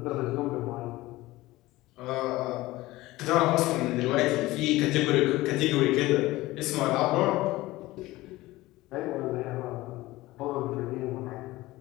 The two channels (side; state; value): right; quieter; 18.5 dB